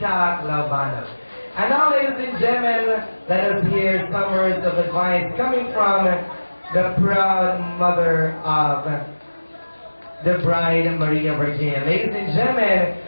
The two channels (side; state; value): both; inverted; correlation -1.00